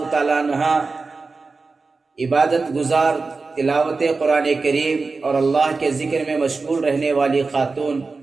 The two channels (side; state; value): left; quieter; 4.0 dB